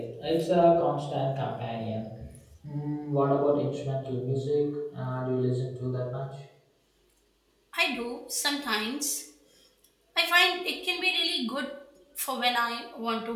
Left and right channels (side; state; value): both; identical; correlation 1.00